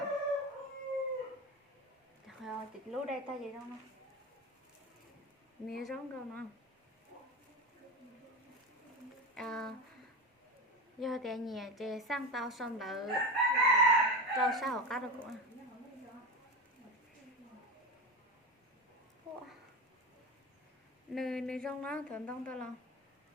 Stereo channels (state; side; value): normal; both; correlation 0.23